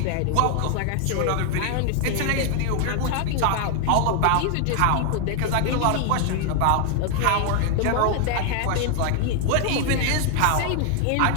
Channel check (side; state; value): both; different; correlation 0.00